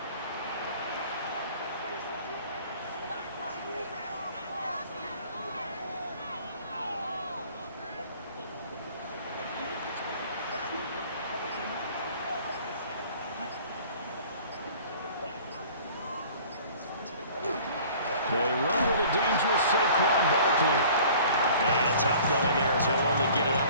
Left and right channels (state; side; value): inverted; both; correlation -0.49